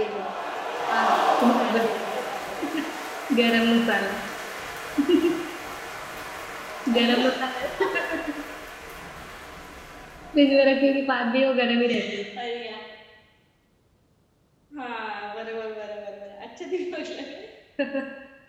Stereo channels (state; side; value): identical; both; correlation 1.00